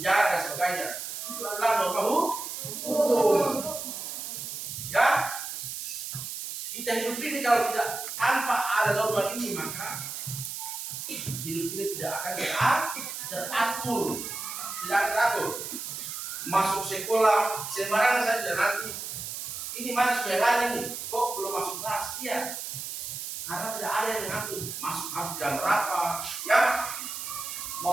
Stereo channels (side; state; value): right; noise; hiss, 6 dB below the sound